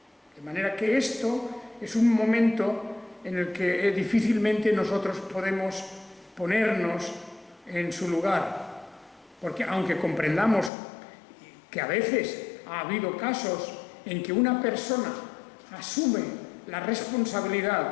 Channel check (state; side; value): drops out; right; at 10.7 s